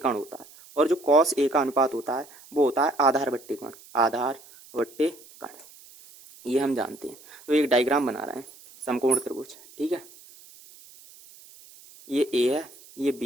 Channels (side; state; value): right; noise; hiss, 22 dB below the sound